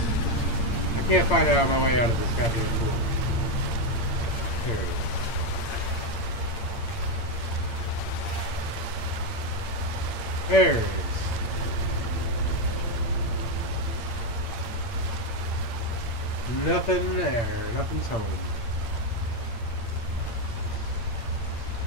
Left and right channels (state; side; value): late; right; 8.7 ms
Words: I can't find out my way out of this goddamn pool. There it is. There it is. Nothing there. Nothing's home.